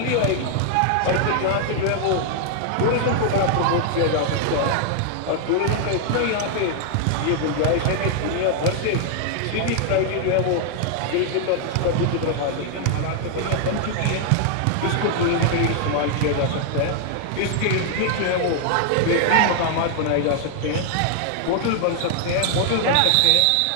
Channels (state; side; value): different; both; correlation 0.00